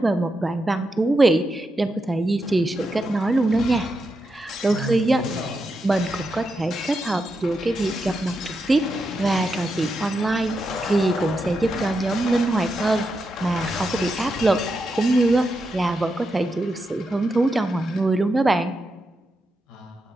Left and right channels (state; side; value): normal; both; correlation 0.86